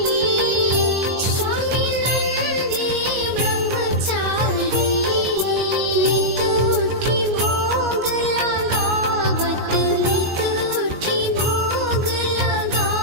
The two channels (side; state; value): left; late; 19 ms